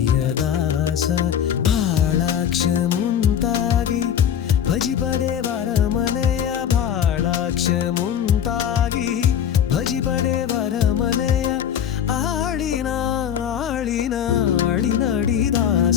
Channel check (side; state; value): right; quieter; 9.1 dB